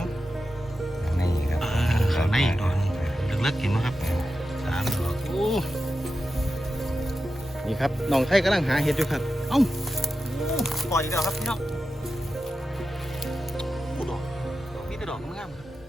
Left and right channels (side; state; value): both; normal; correlation 0.91